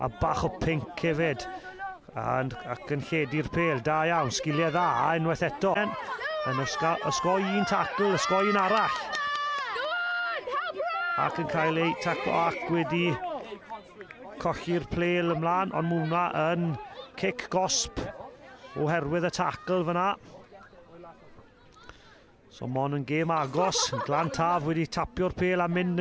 a bach o pinc hefyd. Ac yn lledu'r pel, da iawn, sgiliau dda, unwaith eto. Yn ysgoi un tacl, ysgoi un arall. Ac yn cael ei taclo ac wedi colli'r plel ymlaen, ond mae hwnna yn cic gosb oherwydd y tacl fyna. So mon yn gêm agos, Glantaf wedi tapio'r pel a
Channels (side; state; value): both; identical; correlation 1.00